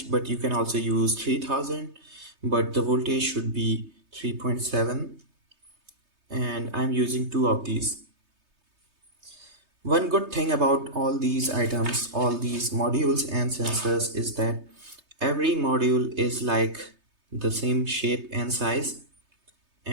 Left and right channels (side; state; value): left; late; 3.3 ms